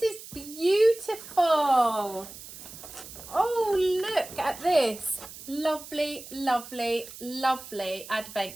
is beautiful. Oh, look at this. Lovely, lovely, lovely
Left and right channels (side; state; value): right; noise; hiss, 15 dB below the sound